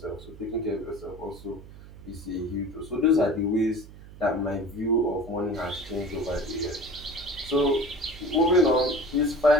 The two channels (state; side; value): noise; right; hum, 17 dB below the sound